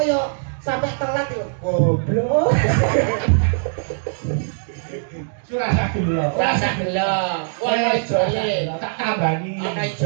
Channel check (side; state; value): left; silent; digital silence